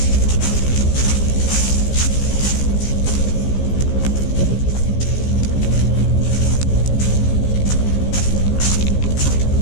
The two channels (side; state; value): right; late; 15 ms